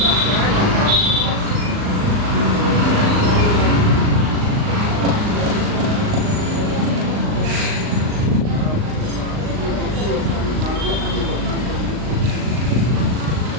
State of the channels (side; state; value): left; late; 39 ms